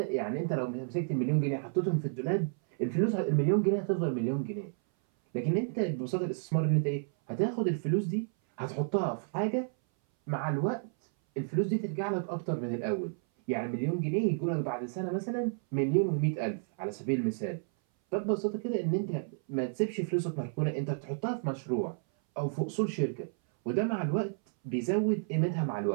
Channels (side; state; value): left; silent; 57 dB below the other